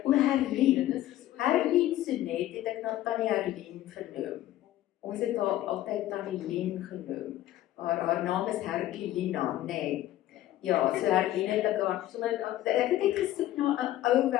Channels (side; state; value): right; quieter; 14.0 dB